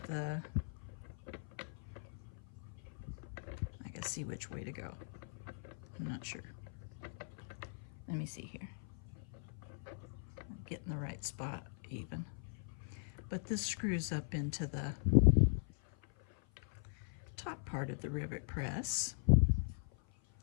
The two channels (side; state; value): right; silent; 51 dB below the other